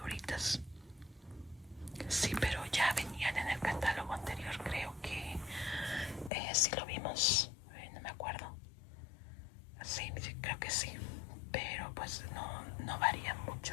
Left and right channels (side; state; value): right; drops out; at 6.3 s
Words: Sí, pero ya venían en el catálogo anterior, creo que sí lo vimos, no me acuerdo. Sí, creo que sí, pero pues no varía